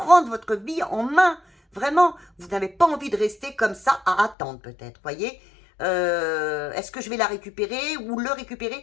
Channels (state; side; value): drops out; right; at 4.4 s